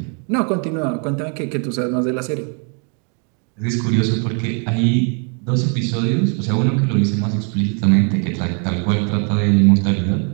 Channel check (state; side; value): quieter; left; 39.1 dB